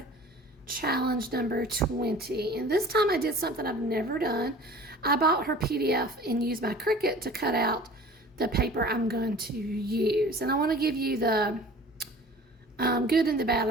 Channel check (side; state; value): both; normal; correlation 0.44